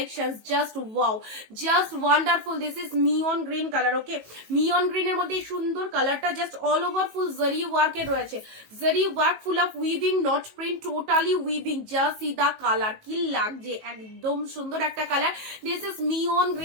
just wow, just wonderful. This is মিয়ন গ্রিন কালার, ওকে। মিয়ন গ্রিনের মধ্যে সুন্দর কালারটা, জাস্ট অল ওভার ফুল জরি ওয়ার্কের রয়েছে, zari work, full of weaving, not print, totally weaving. Just see the colour, কি লাগছে, একদম সুন্দর একটা কালার। দিস ইজ মিয়ন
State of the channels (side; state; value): left; late; 18 ms